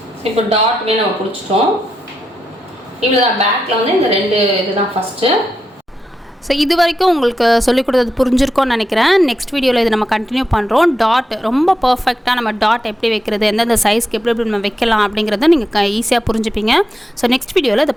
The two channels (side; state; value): both; normal; correlation 0.85